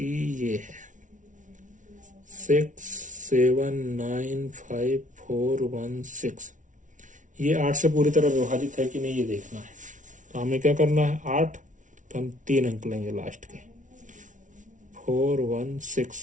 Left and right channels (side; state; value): left; late; 0.37 ms